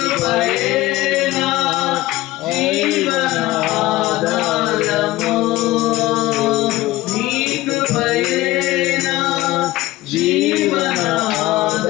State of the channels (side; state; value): right; quieter; 17.4 dB